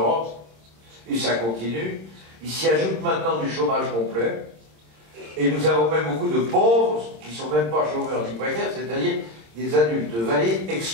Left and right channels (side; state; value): left; late; 26 ms